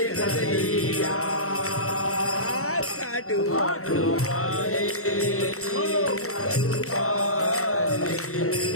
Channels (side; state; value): right; late; 0.64 ms